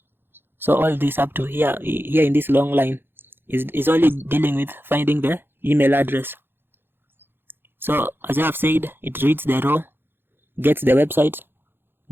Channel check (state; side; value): late; left; 0.10 ms